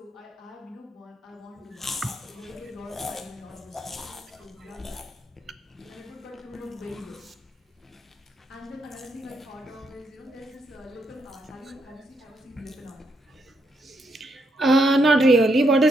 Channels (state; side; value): normal; both; correlation 0.77